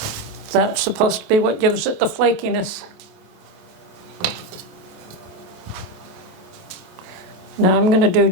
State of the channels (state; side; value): late; left; 27 ms